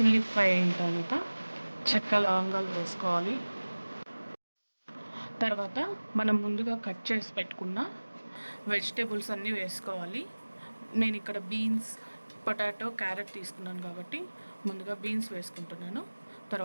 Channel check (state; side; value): inverted; both; correlation -1.00